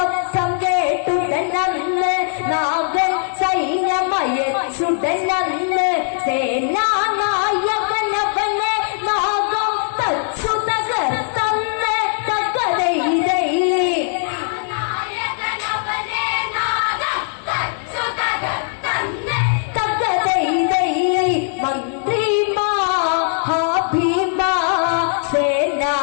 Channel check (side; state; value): right; silent; 66 dB below the other